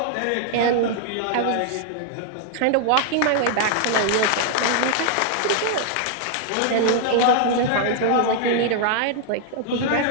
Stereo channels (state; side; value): different; both; correlation 0.00